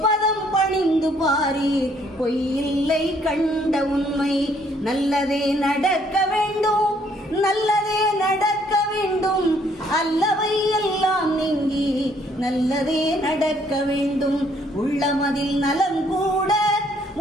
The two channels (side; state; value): both; normal; correlation 0.65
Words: பணிந்து பாரி பொய்யில்லை கண்ட உண்மை. நல்லதே நடக்க வேண்டும், நல்லதே நடக்க வேண்டும், அல்லவை எல்லாம் நீங்கி நல்லதே நடக்க வேண்டும். உள்ளமதில் நலம் கூட